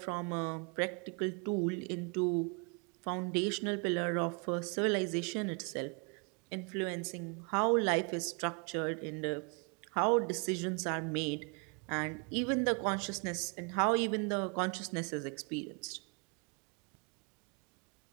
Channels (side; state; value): left; quieter; 35.2 dB